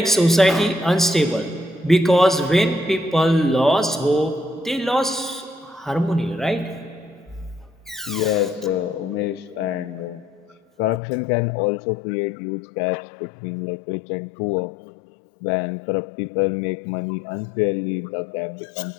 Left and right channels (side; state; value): right; drops out; at 11.0 s